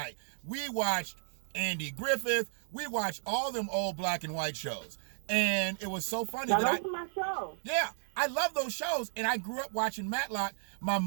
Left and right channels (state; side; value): silent; left; digital silence